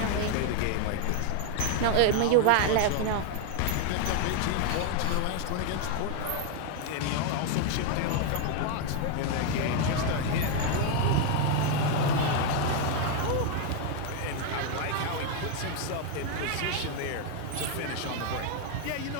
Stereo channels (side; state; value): both; different; correlation 0.01